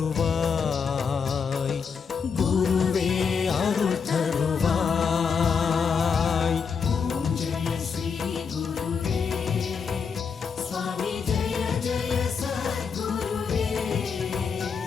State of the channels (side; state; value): right; quieter; 6.0 dB